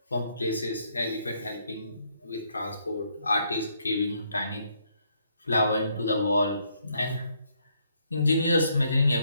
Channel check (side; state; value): both; inverted; correlation -0.72